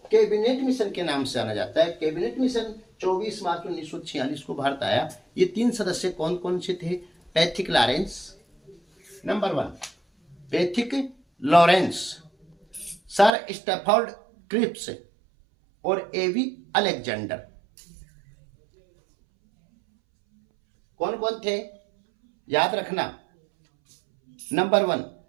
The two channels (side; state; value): left; drops out; at 13.3 s